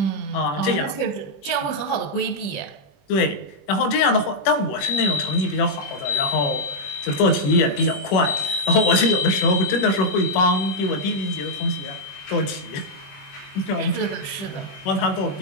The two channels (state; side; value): late; right; 21 ms